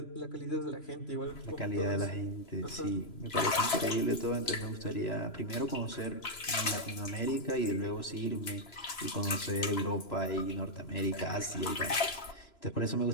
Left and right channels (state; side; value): late; right; 3.0 ms